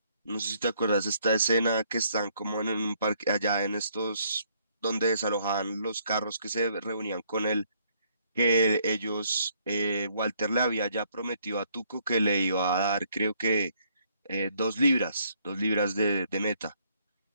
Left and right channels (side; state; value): both; inverted; correlation -0.68